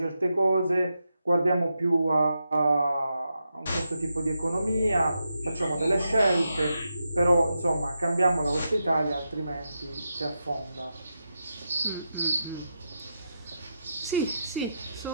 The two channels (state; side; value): inverted; both; correlation -0.86